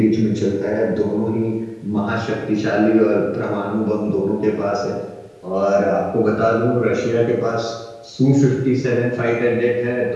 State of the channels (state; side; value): identical; both; correlation 1.00